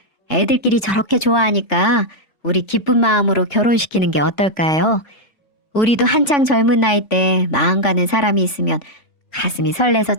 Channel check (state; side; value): late; right; 3.5 ms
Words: 애들끼리 저렇게 좋아하니까 우리 기쁜 마음으로 결혼시키는 게 어떨까요? 우리도 한창 젊은 나이 때 마음 가는 사람이 있으면 가슴이 설레서